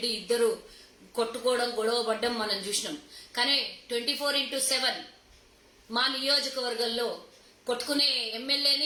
ఇద్దరు కొట్టుకోవడం గొడవ పడ్డం మనం చూసినాం. కానీ 24/7 మా నియోజకవర్గంలో కొట్టుకునే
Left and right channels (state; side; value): identical; both; correlation 1.00